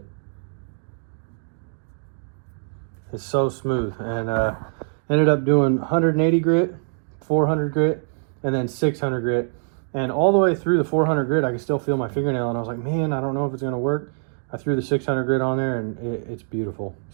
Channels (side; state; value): left; silent; digital silence